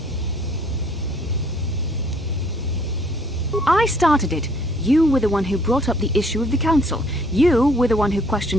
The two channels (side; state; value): both; normal; correlation 0.61